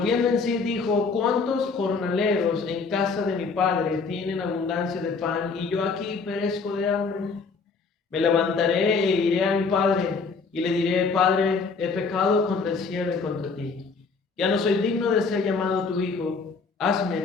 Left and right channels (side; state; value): right; quieter; 4.7 dB